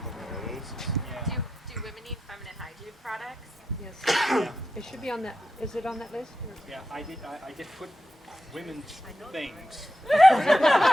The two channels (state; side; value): normal; both; correlation 0.88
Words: places. Yeah. Do women need feminine hygiene products? Yes. Yeah. It should be on that, is it on that list? Yeah, I did put women's things. You're